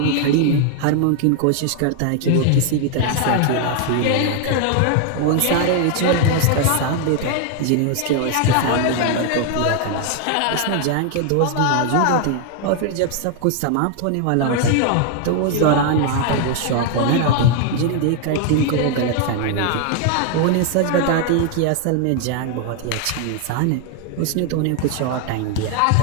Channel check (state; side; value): different; both; correlation 0.00